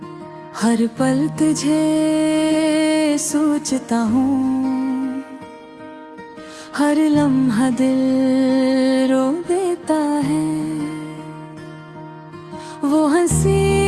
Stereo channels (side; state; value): both; identical; correlation 1.00